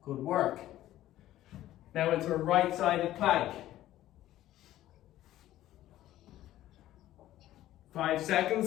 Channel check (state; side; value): quieter; right; 14.0 dB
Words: Good work. Now into a right-sided plank. 5